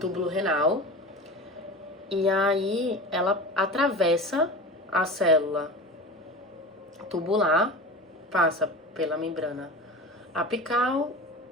renal e aí ela atravessa a célula tubular, passa pela membrana apical,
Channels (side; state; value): both; normal; correlation 0.32